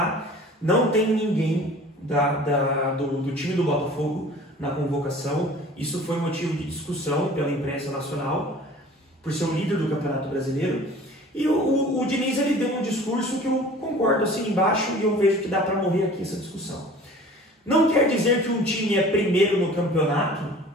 Não tem ninguém do time do Botafogo na convocação. Isso foi motivo de discussão pela imprensa nacional, por ser o líder do Campeonato Brasileiro. E o Diniz, ele deu um discurso que eu concordo assim embaixo, e eu vejo que dá para morrer aqui essa discussão. Não quer dizer que um time é primeiro no campeonato,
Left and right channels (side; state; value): both; normal; correlation 0.45